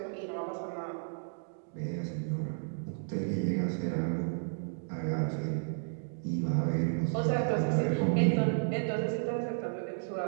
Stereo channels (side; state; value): left; silent; digital silence